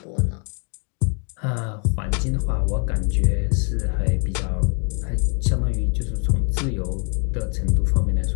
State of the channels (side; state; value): right; quieter; 38.4 dB